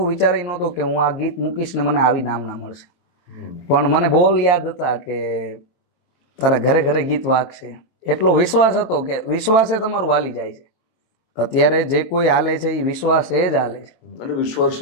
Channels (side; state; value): right; late; 23 ms